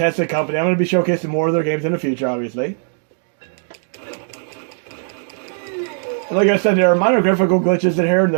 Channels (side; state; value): left; silent; 67 dB below the other